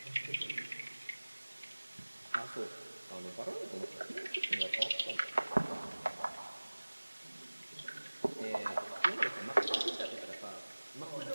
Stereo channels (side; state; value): both; inverted; correlation -1.00